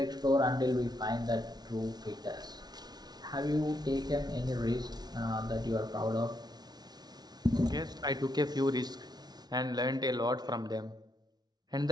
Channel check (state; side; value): late; left; 0.19 ms